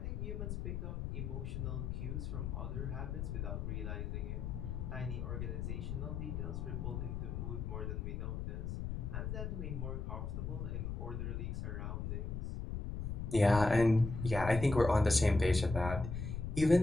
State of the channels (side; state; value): left; noise; rumble, 4 dB below the sound